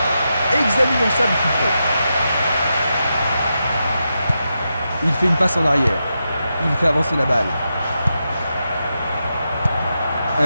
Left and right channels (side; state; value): both; inverted; correlation -0.87